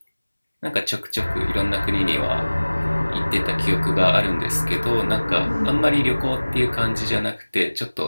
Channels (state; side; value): inverted; both; correlation -1.00